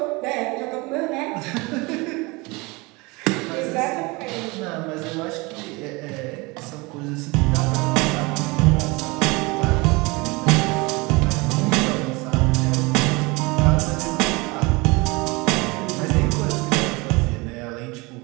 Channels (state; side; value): quieter; left; 25.2 dB